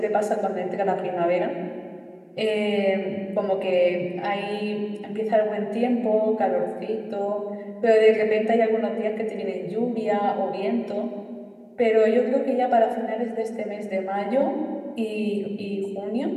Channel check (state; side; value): identical; both; correlation 1.00